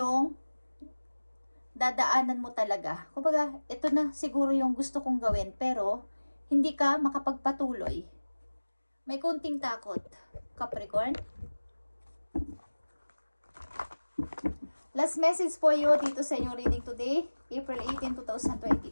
dadaanan mo talaga. Kumbaga, ito na siguro yung gusto kong gawin, pero hindi ka makapagpatuloy. May kunting takot, Capricorn. Last message for you dito sa inyong reading today, April 18,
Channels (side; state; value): both; inverted; correlation -1.00